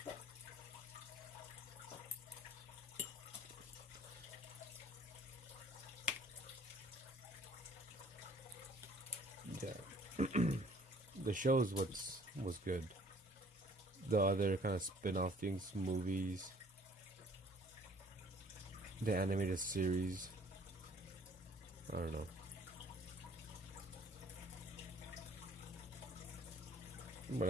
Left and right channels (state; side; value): normal; both; correlation 0.55